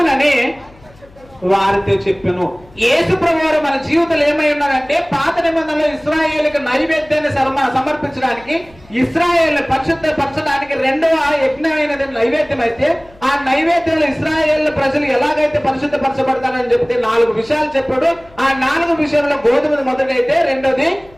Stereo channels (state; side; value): noise; left; hum, 26 dB below the sound